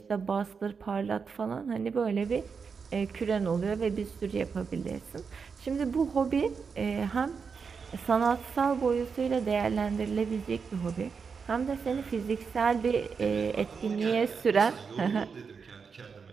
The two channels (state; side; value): quieter; left; 5.7 dB